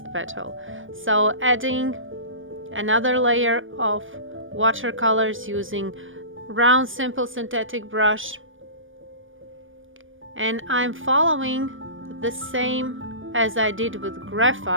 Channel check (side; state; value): left; late; 0.57 ms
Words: petal. So adding another layer of watercolors using round simple synthetic brush, and I'm following the same as I did with